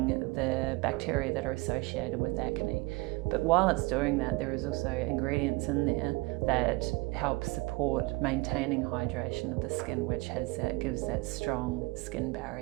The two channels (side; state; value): left; quieter; 24.5 dB